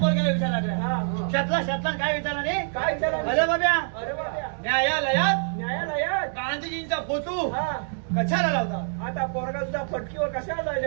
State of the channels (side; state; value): left; silent; digital silence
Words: विचार लागला हा. शातला काय विचारला नाही काय विचारलं? अरे बाब्या अरे बाप्या. न्यायालयात न्यायालयात. गांधीजींचा फोटो हा. कशाला लावता आता पोरगा तुझा फटकीवर कशाला